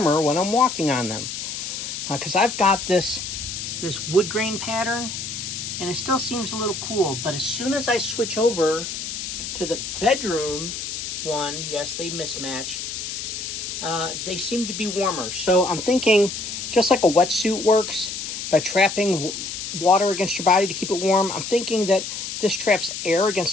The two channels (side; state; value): left; noise; hiss, 6 dB below the sound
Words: when I'm walking on them. Because I've got this wood grain pattern, and it still seems a little cool, but as soon as I switch over to the bedroom one, yes, they mismatch, they seem to be warmer. So I'm thinking, just like a wetsuit works by trapping water against your body to keep it warm, I'm thinking that this traps air against